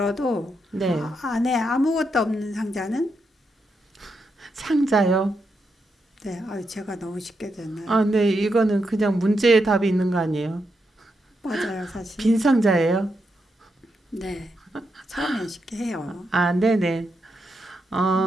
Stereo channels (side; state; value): both; normal; correlation 0.83